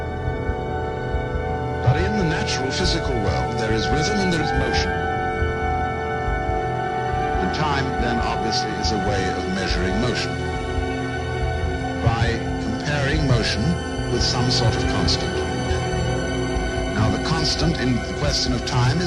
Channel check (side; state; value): both; identical; correlation 1.00